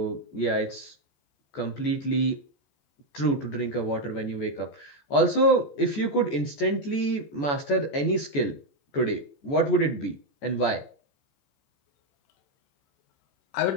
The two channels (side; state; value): right; late; 14 ms